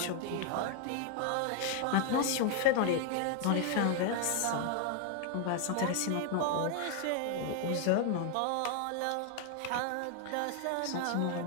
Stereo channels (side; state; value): both; different; correlation 0.00